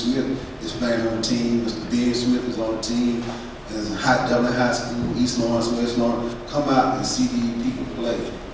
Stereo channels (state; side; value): identical; both; correlation 1.00